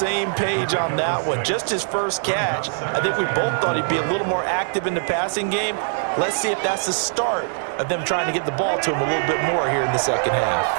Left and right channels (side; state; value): left; silent; 64 dB below the other